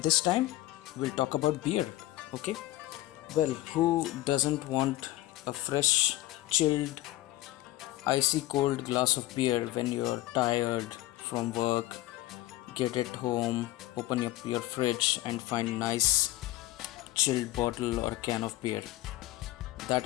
this time we'll talk about beer. Okay? Well, who doesn't want a fresh, chilled, icy cold glass of beer when you're tired from work, get it home, open up your fridge and find nice chilled bottle or can of beer. That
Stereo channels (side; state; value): right; quieter; 16.7 dB